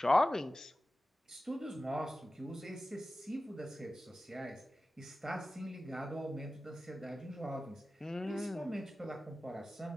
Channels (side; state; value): both; normal; correlation 0.95